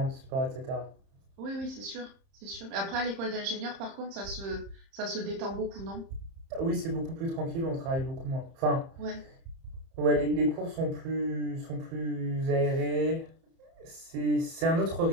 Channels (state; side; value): late; left; 30 ms